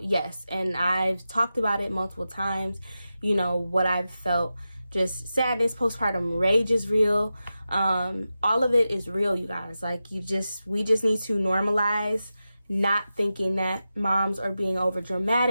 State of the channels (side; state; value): both; inverted; correlation -0.92